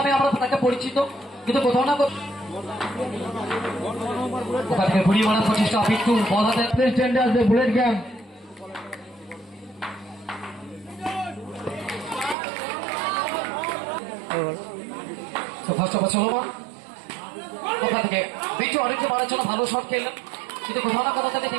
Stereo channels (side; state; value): left; drops out; at 12.4 s